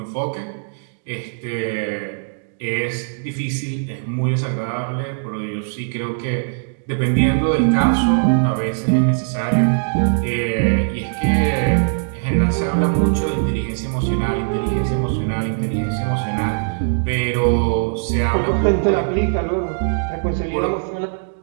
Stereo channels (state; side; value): silent; left; digital silence